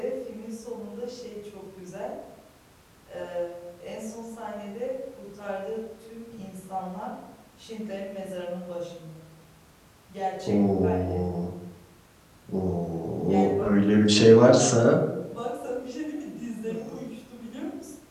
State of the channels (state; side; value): identical; both; correlation 1.00